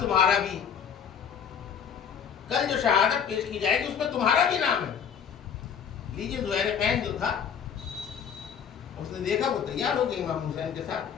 تمہارا بھی، کل جو شہادت پیش کی جائے گی اس میں تمہارا بھی نام ہے۔ لیجیے زہیر قین جو تھا، اس نے دیکھا وہ تیار ہو گیا امام حسین کے ساتھ،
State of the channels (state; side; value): quieter; right; 7.6 dB